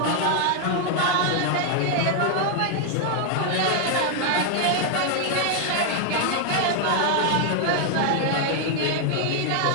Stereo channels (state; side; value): different; both; correlation 0.00